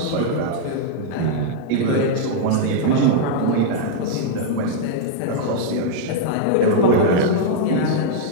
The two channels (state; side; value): different; both; correlation -0.01